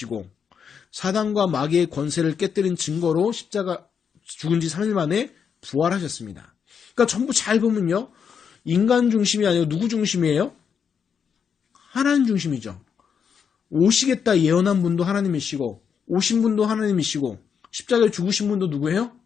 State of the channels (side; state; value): right; quieter; 7.0 dB